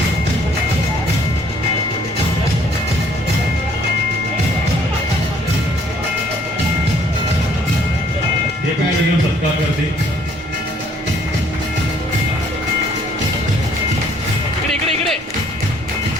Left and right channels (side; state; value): both; normal; correlation 0.62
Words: एक मिनिट सत्कार करते.